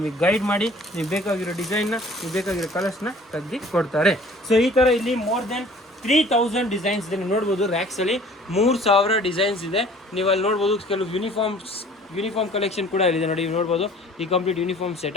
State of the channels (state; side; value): normal; both; correlation 0.51